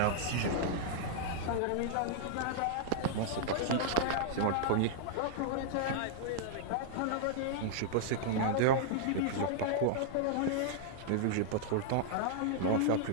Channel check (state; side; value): different; both; correlation -0.01